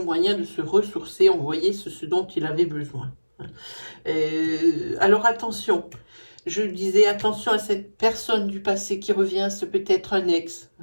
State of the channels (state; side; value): inverted; both; correlation -1.00